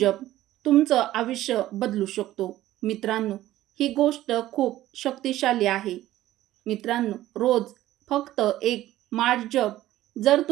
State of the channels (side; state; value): left; quieter; 14.7 dB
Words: तुमचं आयुष्य बदलू शकतो. मित्रांनो, ही गोष्ट खूप शक्तिशाली आहे. मित्रांनो, रोज फक्त एक माळ जप. जर